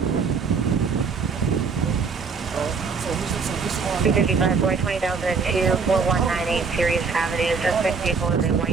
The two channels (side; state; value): left; quieter; 5.1 dB